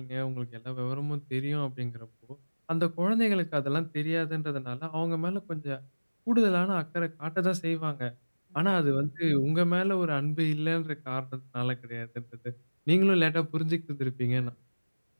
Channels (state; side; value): inverted; both; correlation -1.00